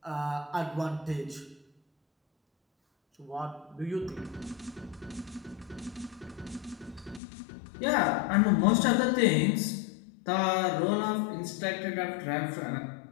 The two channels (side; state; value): right; drops out; at 7.2 s